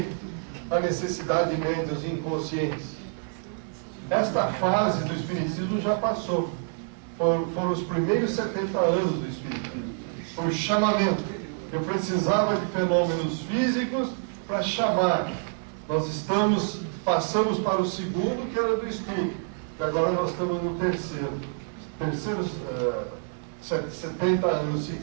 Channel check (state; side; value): silent; left; 60 dB below the other